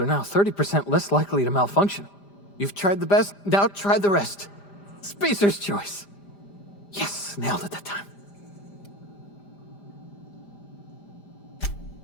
are now 30% less likely to malfunction. You've tried the best, now try the rest. Spacer's choice. Yes, nailed it that time.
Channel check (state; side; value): late; right; 5.0 ms